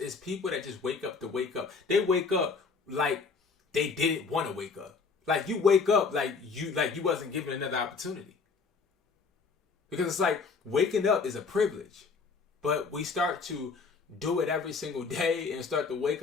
people that just wake up to wake up. They wake up like they didn't want to wake up. Like, you wake up like you wasn't given another opportunity. Because it's like waking up is a privilege. But we start to do it every single day and start to wake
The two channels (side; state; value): right; quieter; 4.9 dB